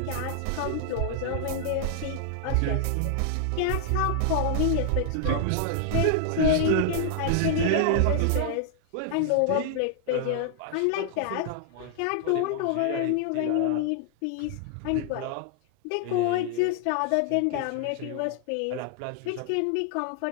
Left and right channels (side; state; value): both; different; correlation -0.01